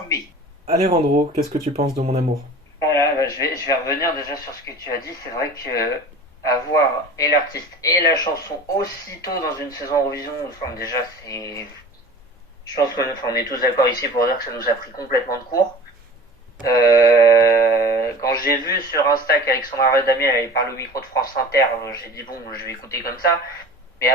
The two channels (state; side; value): normal; both; correlation 0.40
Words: mai. Alejandro, qu'est-ce que tu penses de Mon Amour ? Voilà, je vais revenir déjà sur ce que tu as dit. C'est vrai que avoir et l'artiste et la chanson aussitôt dans une saison Eurovision, enfin déjà c'est... Je pense qu'on est tous d'accord ici pour dire que ça nous a pris complètement de court. Quand j'ai vu sur Insta qu'Alexandra Redamiel elle parle au micro de France Inter, j'ai dit bon, je vais écouter comme ça. Mais